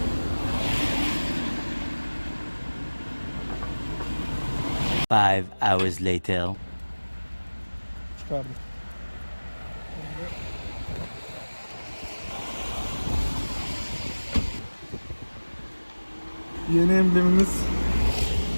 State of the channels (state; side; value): inverted; both; correlation -1.00